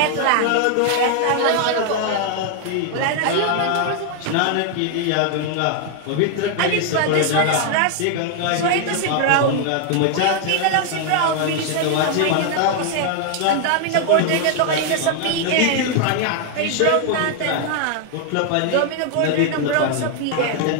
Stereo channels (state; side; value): different; both; correlation 0.00